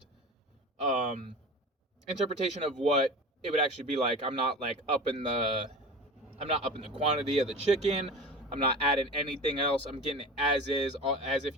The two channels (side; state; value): both; normal; correlation 0.33